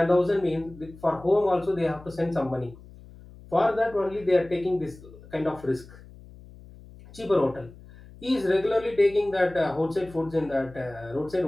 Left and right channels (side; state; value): left; noise; hum, 20 dB below the sound